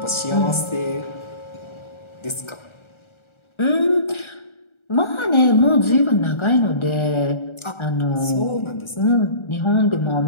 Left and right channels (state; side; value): late; right; 1.4 ms